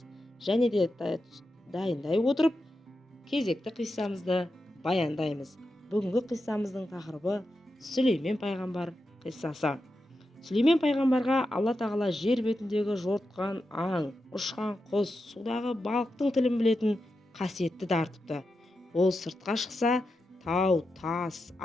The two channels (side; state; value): both; normal; correlation 0.89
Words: Және де дайындай отырып, кезекті қиссамызды баяндаймыз. Бүгінгі қиссамыздың тақырыбы Сүлеймен пайғамбар қиссасы. Сүлеймен пайғамбарға Алла тағала жер бетіндегі жортқан аң, ұшқан құс, судағы балықтың тілін білетін қасиетті дарытыпты. Ол сыртқа шықса, тау, тас,